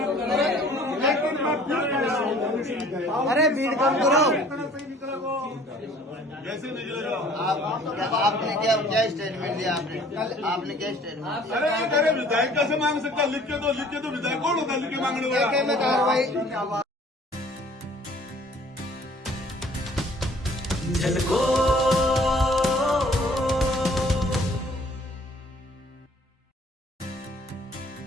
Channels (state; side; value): normal; both; correlation 0.54